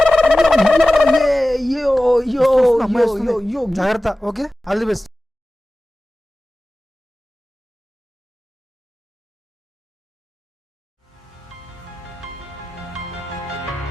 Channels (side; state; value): both; normal; correlation 0.96